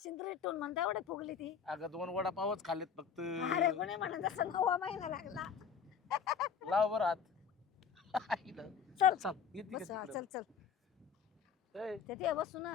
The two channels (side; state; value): right; quieter; 6.8 dB